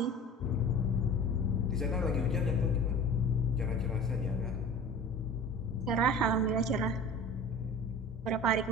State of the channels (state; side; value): normal; both; correlation 0.40